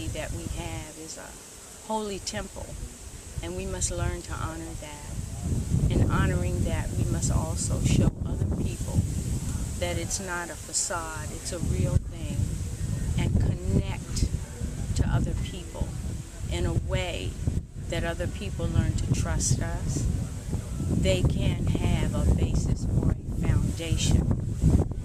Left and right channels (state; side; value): identical; both; correlation 1.00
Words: that we have is a holy temple, and we must learn to honor that. In honoring that, we must also show other people that it's not a facade, it's a real thing, and connect to other people in a way that other people learn to trust us. They can have a basis or a foundation,